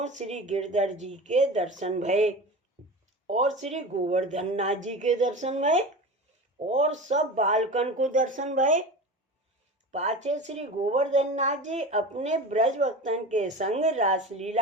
श्री गिरधर जी के दर्शन भये और श्री गोवर्धन नाथ जी के दर्शन भये और सब बालकन को दर्शन भये। पाछे श्री गोवर्धन नाथ जी अपने ब्रज भक्तन के संग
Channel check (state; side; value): normal; both; correlation 0.30